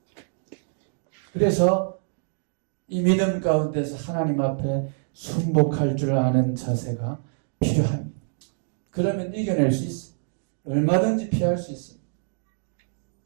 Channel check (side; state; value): left; silent; digital silence